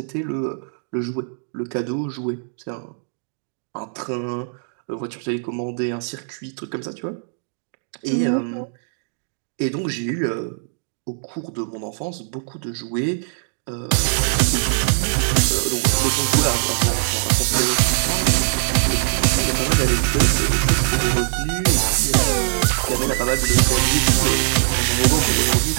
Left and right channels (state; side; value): silent; left; digital silence